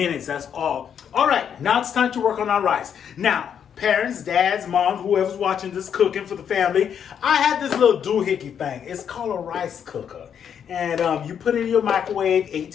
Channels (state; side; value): quieter; right; 8.2 dB